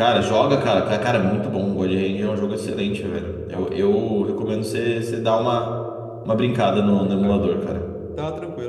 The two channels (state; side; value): identical; both; correlation 1.00